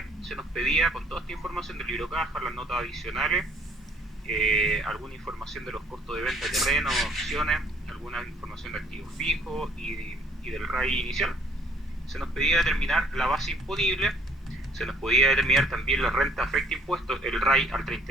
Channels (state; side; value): normal; both; correlation 0.61